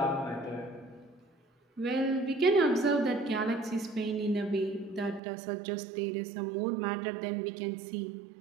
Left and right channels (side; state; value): left; drops out; at 5.2 s